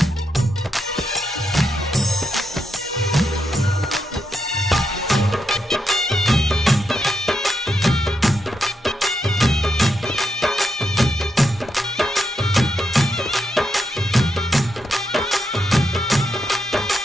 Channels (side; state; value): both; normal; correlation 0.83